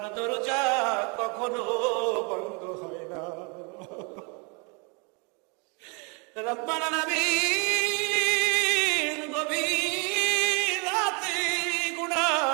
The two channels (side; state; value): left; quieter; 33.1 dB